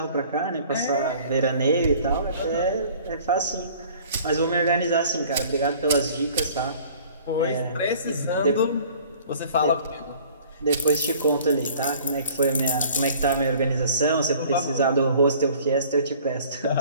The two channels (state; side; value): inverted; both; correlation -0.51